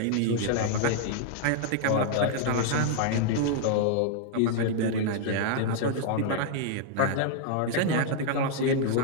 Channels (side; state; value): both; different; correlation -0.01